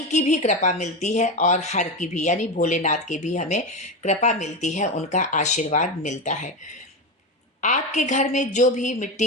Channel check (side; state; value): both; normal; correlation 0.17